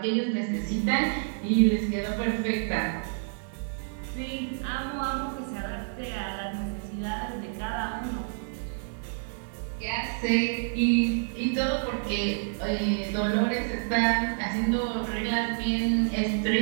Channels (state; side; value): silent; left; digital silence